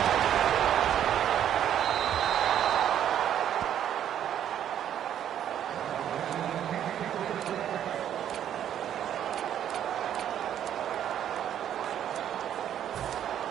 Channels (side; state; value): left; quieter; 10.2 dB